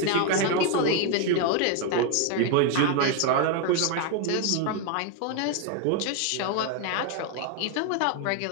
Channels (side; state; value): both; different; correlation 0.01